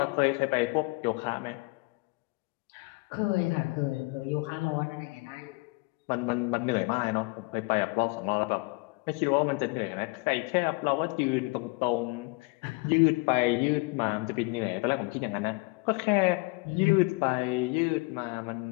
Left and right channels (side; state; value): right; quieter; 27.4 dB